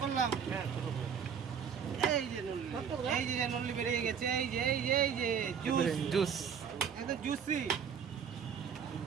করলাম। এই যে নল্লি, এই যে নল্লি বেরিয়ে গেছে, এই যে এই যে এই যে জুস, জুস। একদম জুসি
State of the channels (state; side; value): quieter; left; 7.3 dB